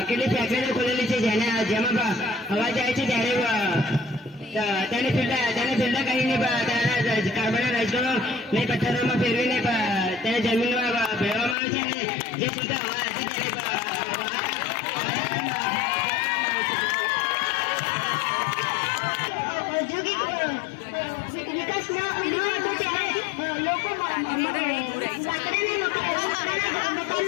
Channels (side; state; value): right; drops out; at 11.6 s